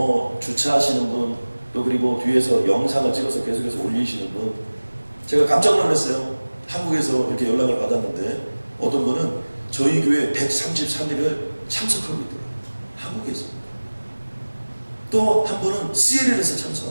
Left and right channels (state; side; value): inverted; both; correlation -1.00